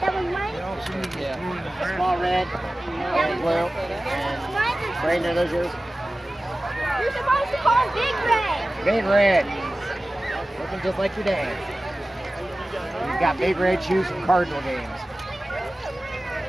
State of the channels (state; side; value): normal; both; correlation 0.96